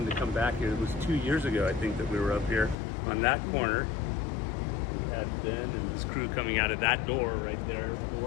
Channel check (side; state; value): right; drops out; at 2.8 s